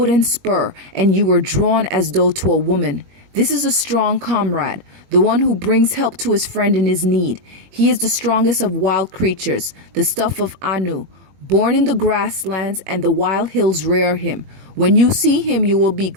spur, and you were drawn as though to a woman. This is a strong comrade, the one who brings help to his friend in his need. He is the strongest of wild creatures, the stuff of Anu. Born in the grasslands, and the wild hills rear him. When you see him, you will be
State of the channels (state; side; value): late; left; 21 ms